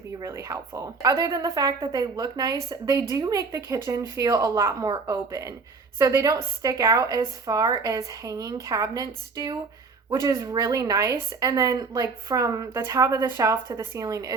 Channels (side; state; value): left; quieter; 4.5 dB